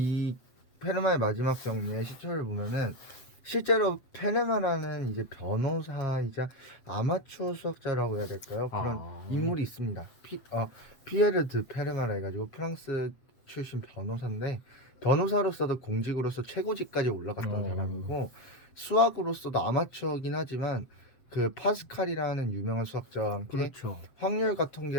페르마의 마지막 정리의 시초를 보면은 실제로 페르마라는 이제 변호사이자 아마추어 수학자라고 해야 될까요? 그런 인물이 있습니다. 피에르 드 페르마라 해가지고 프랑스 출신 변호사인데, 변호사로서도 공직으로서 최고직까지 올라갔던 사람이고, 수학으로서도 아마추어긴 하지만 그 파스칼이라는 유명한 수학자와 함께 그렇죠. 확률과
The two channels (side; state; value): right; late; 7.8 ms